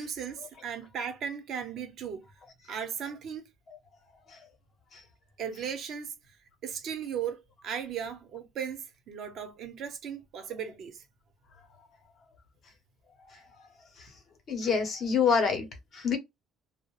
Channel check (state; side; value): normal; both; correlation 0.51